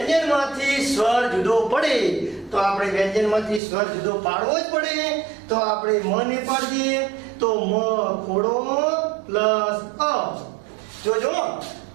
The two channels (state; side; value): drops out; left; at 3.6 s